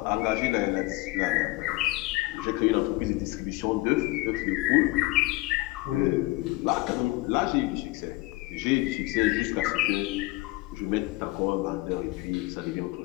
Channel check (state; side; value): quieter; right; 20.8 dB